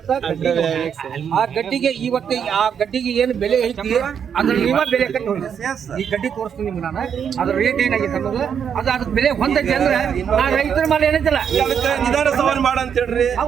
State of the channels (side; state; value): left; quieter; 7.8 dB